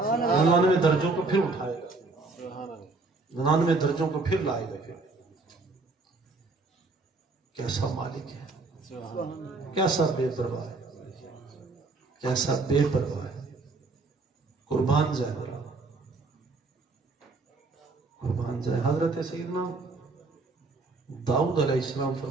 درجوں کو پھر اٹھائے گا، 99 درجوں کو پھر لائے گا۔ پھر کیسا مالک ہے، کیسا بے پرواہ ہے، کیسا بے پرواہ ہے، قربان جائے۔ قربان جائے. حضرت سیدنا داؤد علیہ السلام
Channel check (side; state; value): left; quieter; 3.7 dB